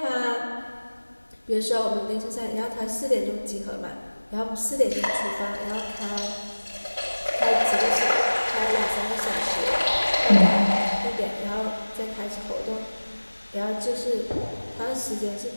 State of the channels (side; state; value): both; inverted; correlation -1.00